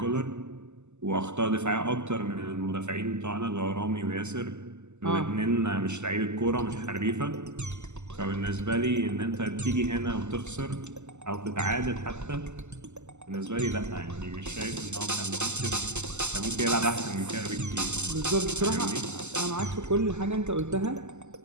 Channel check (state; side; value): late; left; 0.83 ms